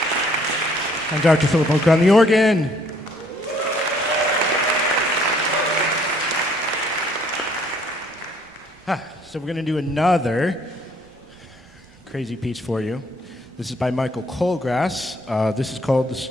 And Dr. Philip Hoch on the organ. So we're going to do another crazy piece for you. This is by Michael Colgrass. This is called The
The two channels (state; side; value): normal; both; correlation 0.63